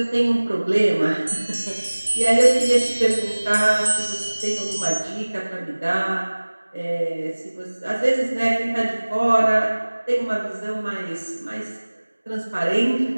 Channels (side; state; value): both; inverted; correlation -1.00